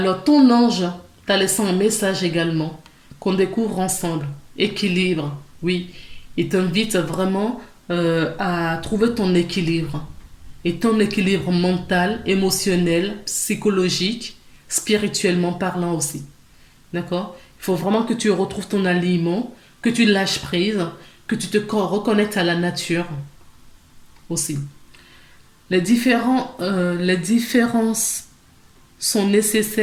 ton ange t'a laissé un message également qu'on découvre ensemble. Équilibre, oui. Il t'invite vraiment à trouver ton équilibre. Et ton équilibre mental, émotionnel, psychologique, spirituellement parlant aussi. D'accord? Il faut vraiment que tu retrouves ton aliment, que tu lâches prise, que tu te reconnectes à la nature aussi. Les différences sont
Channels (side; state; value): both; identical; correlation 1.00